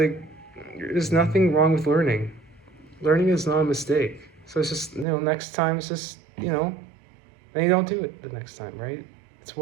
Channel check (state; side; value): drops out; left; at 5.1 s